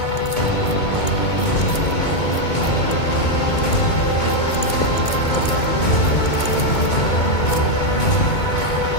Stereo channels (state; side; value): late; right; 2.2 ms